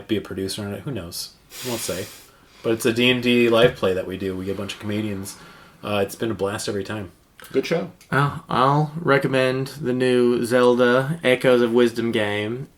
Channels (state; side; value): identical; both; correlation 1.00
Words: be a producer on it. Who knows? Won't say. But it's a D&D live play that we do. We get a bunch of comedians. It's been a blast every time. Good show. Well, I'll recommend the new Zelda Echoes of Wisdom game.